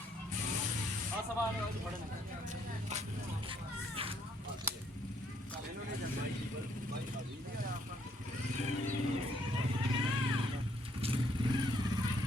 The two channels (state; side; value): normal; both; correlation 0.69